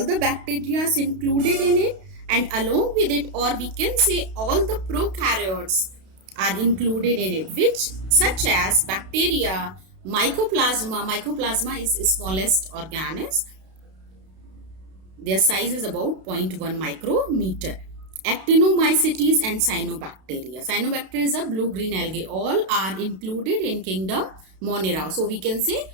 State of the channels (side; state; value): left; late; 32 ms